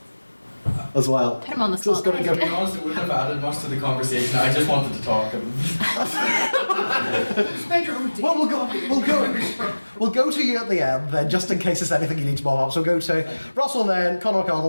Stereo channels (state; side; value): inverted; both; correlation -1.00